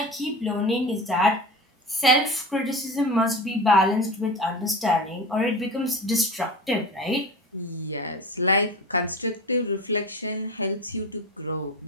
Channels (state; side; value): normal; both; correlation 0.30